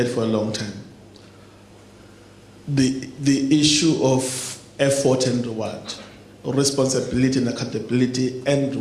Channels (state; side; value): identical; both; correlation 1.00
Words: for a long time. The issue of effort and reward. responsibility and accountability and